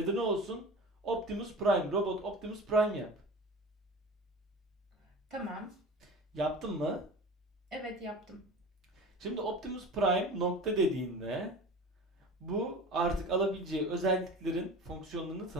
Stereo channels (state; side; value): normal; both; correlation 0.36